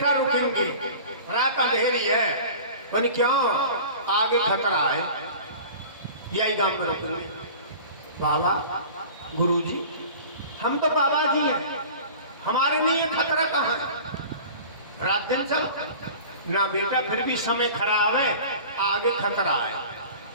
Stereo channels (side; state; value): both; inverted; correlation -0.40